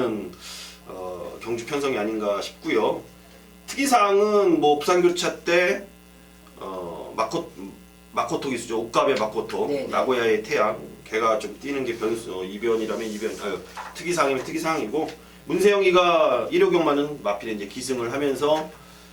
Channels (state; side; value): identical; both; correlation 1.00